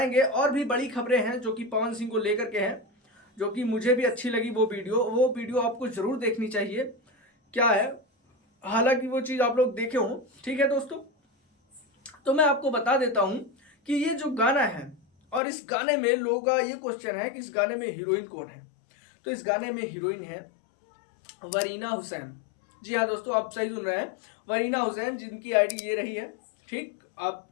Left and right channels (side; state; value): right; drops out; at 15.4 s